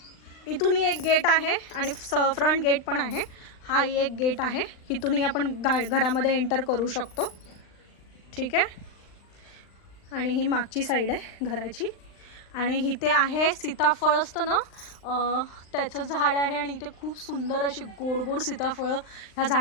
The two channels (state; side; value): late; right; 39 ms